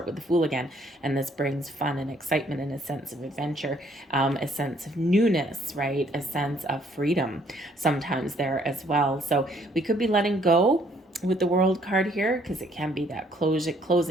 with the Fool again. And this brings fun and excitement and a sense of adventure, a sense of newness, right, a sense of freedom sometimes there as well. So we could be letting go with the World card here, because it can be that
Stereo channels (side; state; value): both; normal; correlation 0.65